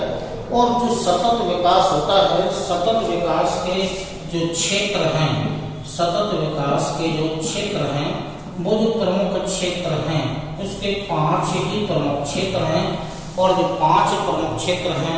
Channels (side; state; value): both; identical; correlation 1.00